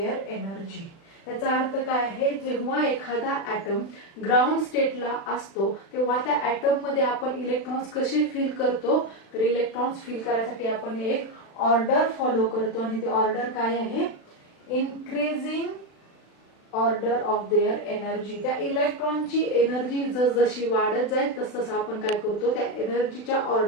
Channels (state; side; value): late; right; 36 ms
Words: energy. याचा अर्थ काय आहे, जेव्हा एखादा ऍटम ग्राउंड स्टेटला असतो तेव्हा त्या ऍटम मध्ये आपण इलेक्ट्रॉन्स कसे फिल करतो, तर इलेक्ट्रॉन्स फिल करायसाठी आपण एक ऑर्डर फॉलो करतो आणि ते ऑर्डर काय आहे, increasing order of their energy. त्या इलेक्ट्रॉनची एनर्जी जशी वाढत जाईल तसं आपण काय करतो, त्या एनर्जीच्या